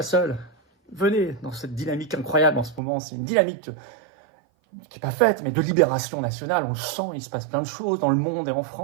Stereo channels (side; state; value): left; drops out; at 2.8 s